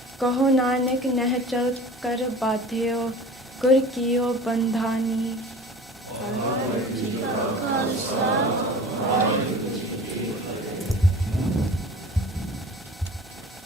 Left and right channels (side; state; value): both; normal; correlation 0.41